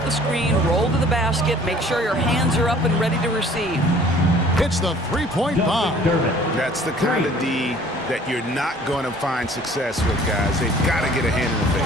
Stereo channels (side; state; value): both; normal; correlation 0.53